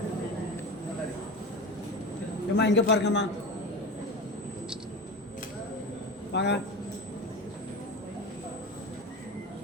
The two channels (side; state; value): both; normal; correlation 0.28